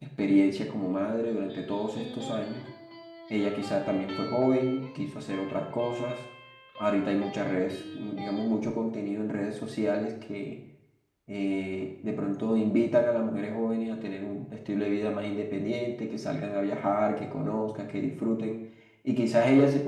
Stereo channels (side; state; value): both; identical; correlation 1.00